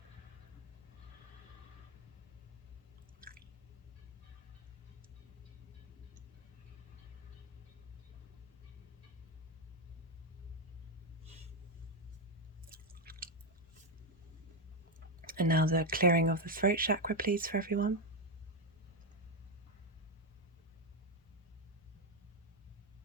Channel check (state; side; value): normal; both; correlation 0.05